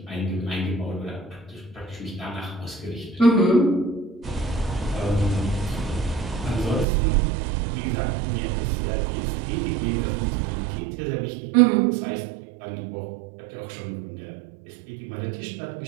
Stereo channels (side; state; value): left; drops out; at 6.9 s